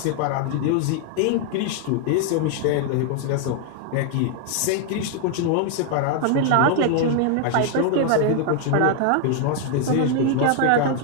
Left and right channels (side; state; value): both; different; correlation 0.00